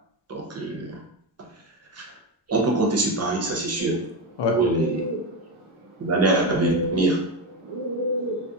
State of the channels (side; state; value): both; normal; correlation 0.15